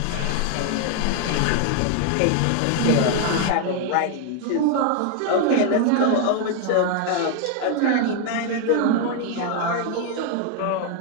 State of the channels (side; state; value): both; different; correlation 0.01